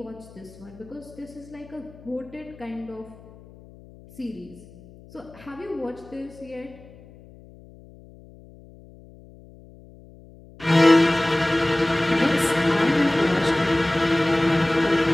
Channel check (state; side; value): noise; left; hum, 22 dB below the sound